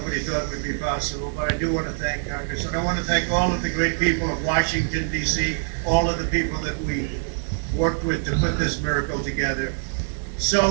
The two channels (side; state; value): left; silent; 62 dB below the other